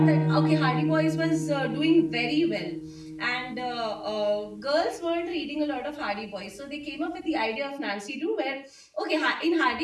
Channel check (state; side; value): identical; both; correlation 1.00